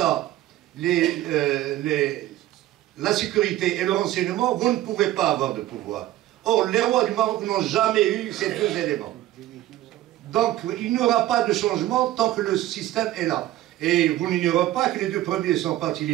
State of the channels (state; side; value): quieter; left; 14.5 dB